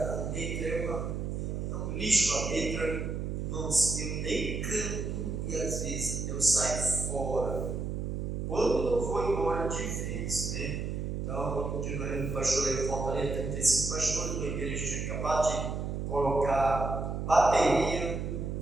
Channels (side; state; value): right; noise; hum, 3 dB below the sound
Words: letra é um lixo a letra. Irmãos, eu nem canto e às vezes eu saio fora. Quando eu vou embora de vez, né? Então, outro dia no pastor aí em Fortaleza, 35 pastores, uma igreja tinha acabado de colocar bateria.